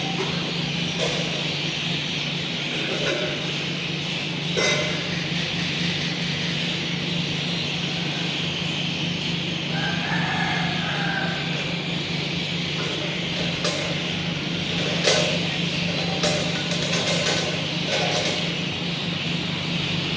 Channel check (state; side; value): identical; both; correlation 1.00